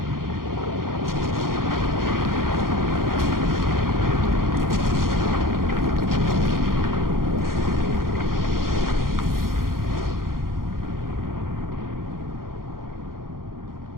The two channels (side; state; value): left; late; 0.92 ms